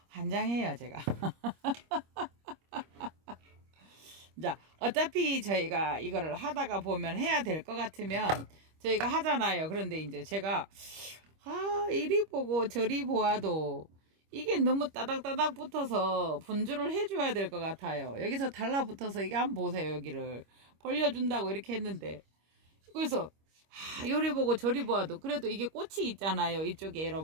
환장해요, 제가. 자, 어차피 저희가 이거를 하다가 보면 해야 될 것 같으면 저희가 하잖아요. 그런데 이제 제가 이리 보고 저리 보아도 이게 너무 따닥따닥 붙어서 분주를 해줘야 될 것 같아요. 여기서 달라붙어서 이게 한번 보세요. 여기를 벌려준다고 이렇게 했는데, 그래서 요리 보고 저리 보아도 그래도 이게 꽃이 있잖아요. 이쪽에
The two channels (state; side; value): late; left; 25 ms